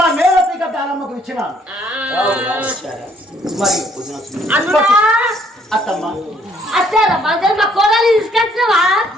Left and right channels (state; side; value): normal; both; correlation 0.65